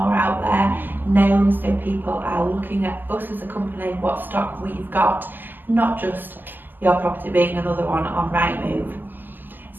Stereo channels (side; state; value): left; late; 0.089 ms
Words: out there, known, so people are looking at us as a company, what stock we've got, not just your property being another one on Rightmove.